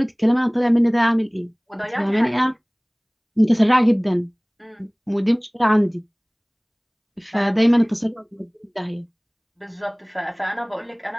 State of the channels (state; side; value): identical; both; correlation 1.00